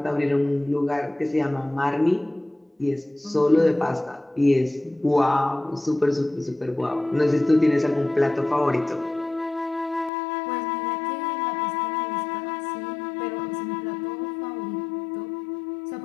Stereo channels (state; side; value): drops out; right; at 10.1 s